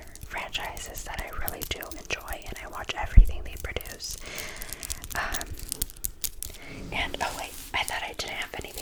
franchises that I really do enjoy, and I watch everything they produce. And oh wait, I thought I didn't have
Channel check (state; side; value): identical; both; correlation 1.00